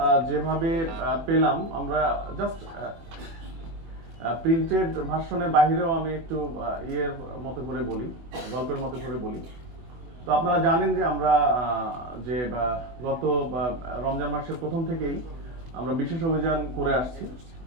যেভাবে পেলাম, আমরা জাস্ট প্রিন্টেড ভার্সনের বাইরেও আমি একটু ইয়ের মতো করে বলি, গল্পের মতো করে বলি। তো আপনারা জানেন যে আমরা যে গত রমজান মাসের প্রথম থেকেই আমরা বিশেষ অভিযান করে আসছি।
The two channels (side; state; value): left; late; 24 ms